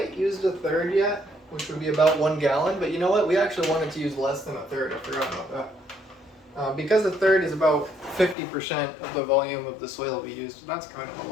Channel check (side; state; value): right; drops out; at 8.3 s